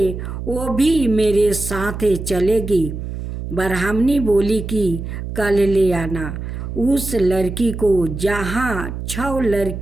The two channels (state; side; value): noise; right; hum, 7 dB below the sound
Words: वो भी मेरे साथ चलेगी। ब्राह्मणी बोली कि कल ले आना उस लड़की को, जहाँ 6